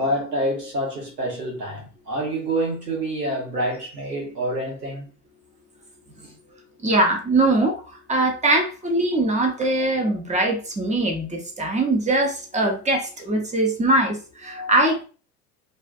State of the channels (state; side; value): normal; both; correlation 0.12